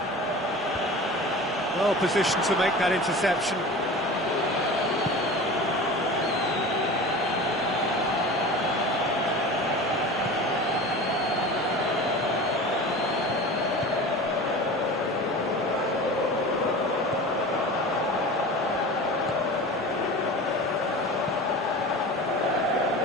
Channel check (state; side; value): normal; both; correlation 0.35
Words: Well positioned to make that interception.